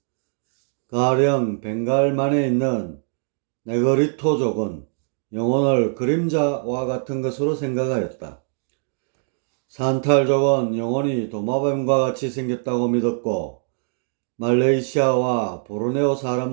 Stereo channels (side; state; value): left; silent; digital silence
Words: 가령 벵갈만에 있는 네그리토족은 영혼을 그림자와 같은 것으로 생각하였다. 산탈족은 영혼이 도마뱀과 같이 생겼다고 믿었고, 말레이시아와 보르네오